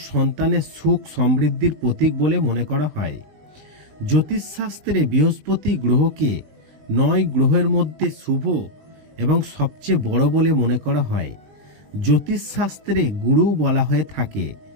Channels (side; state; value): left; late; 20 ms